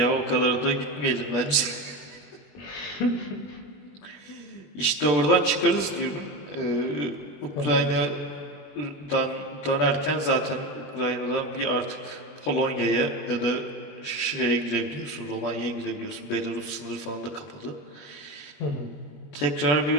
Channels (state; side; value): late; right; 20 ms